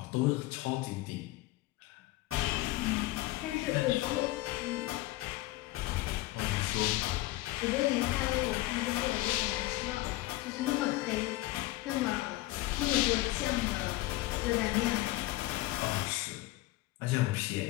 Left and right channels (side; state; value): right; quieter; 18.2 dB